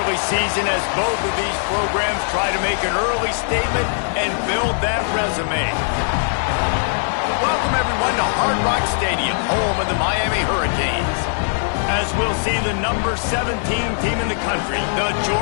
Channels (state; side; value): silent; right; digital silence